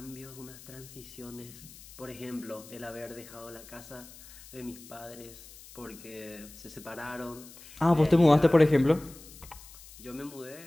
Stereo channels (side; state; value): left; noise; hiss, 19 dB below the sound